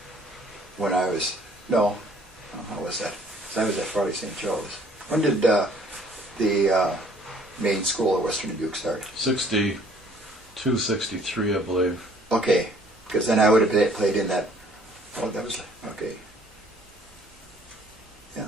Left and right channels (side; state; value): both; normal; correlation 0.58